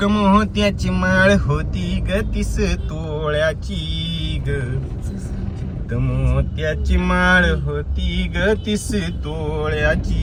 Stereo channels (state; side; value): identical; both; correlation 1.00